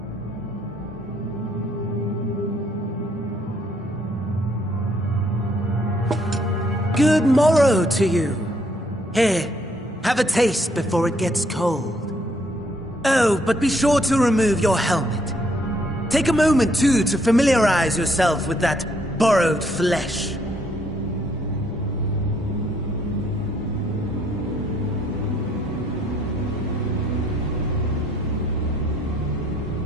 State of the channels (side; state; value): both; normal; correlation 0.68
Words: Good morrow to you. Here, have a taste before it gets cold. Oh, but be sure to remove your helmet. Take a moment, too, to familiarize yourself with that borrowed flesh.